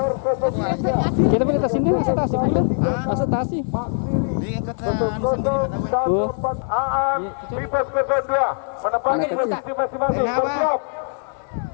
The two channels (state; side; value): silent; right; 59 dB below the other